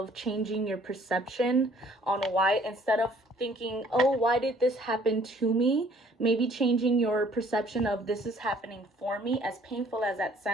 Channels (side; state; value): both; normal; correlation 0.58